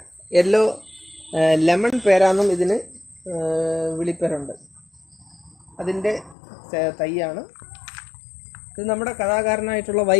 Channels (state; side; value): drops out; right; at 6.4 s